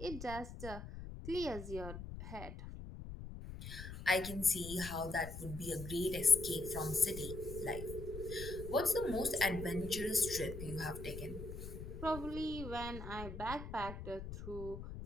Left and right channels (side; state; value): left; noise; rumble, 9 dB below the sound